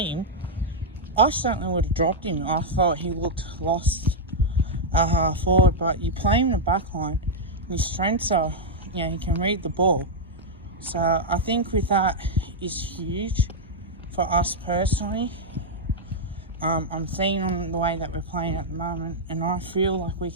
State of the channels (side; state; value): both; normal; correlation -0.04